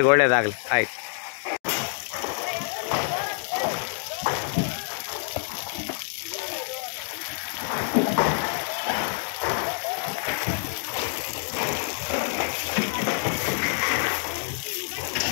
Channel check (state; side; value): silent; right; 60 dB below the other